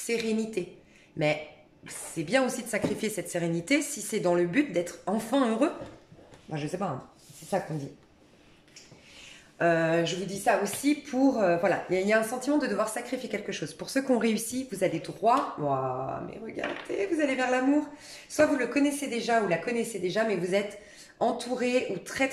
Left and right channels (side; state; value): both; identical; correlation 1.00